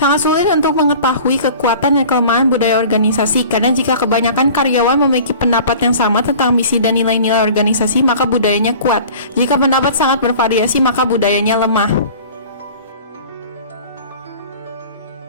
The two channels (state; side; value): inverted; both; correlation -0.43